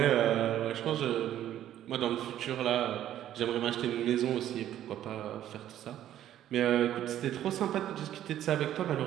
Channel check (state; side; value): quieter; left; 11.8 dB